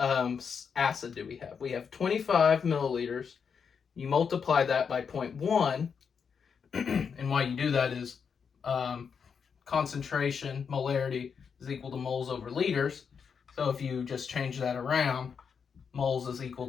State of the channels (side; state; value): right; quieter; 6.4 dB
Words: do we have? We have 25 milliliters. You multiply that by 0.1, and why you do that is concentration, molarity, is equal to moles over liters. So if you just change that around, moles is equal